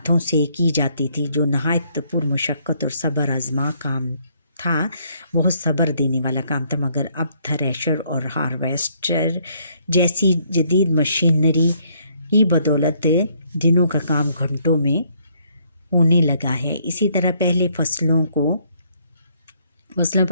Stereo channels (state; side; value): inverted; both; correlation -0.68